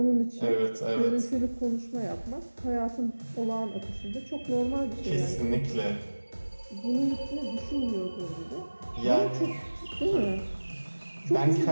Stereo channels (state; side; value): inverted; both; correlation -1.00